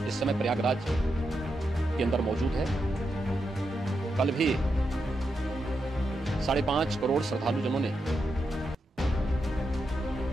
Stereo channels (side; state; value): both; normal; correlation 0.85